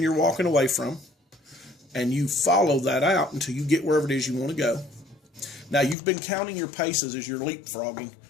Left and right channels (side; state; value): right; drops out; at 6.0 s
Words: walking away from, and you follow that out until you get wherever it is you want to go. Now, you've been counting your paces as you're leapfrogging